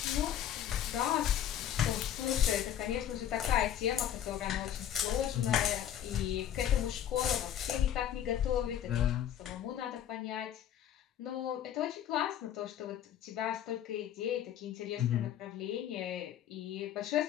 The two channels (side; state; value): right; quieter; 10.4 dB